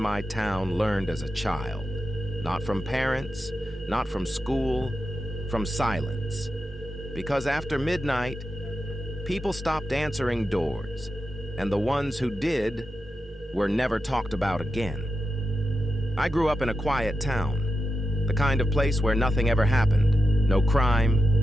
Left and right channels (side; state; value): both; normal; correlation 0.89